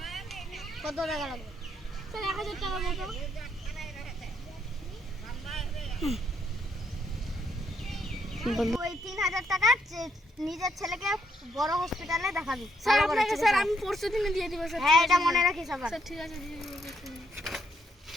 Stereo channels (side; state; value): both; normal; correlation 0.74